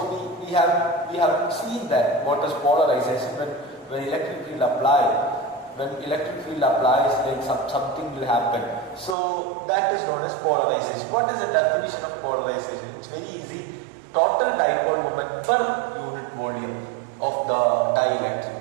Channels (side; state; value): left; drops out; at 9.2 s